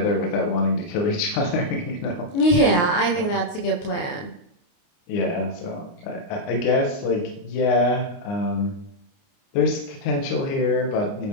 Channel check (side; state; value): right; late; 29 ms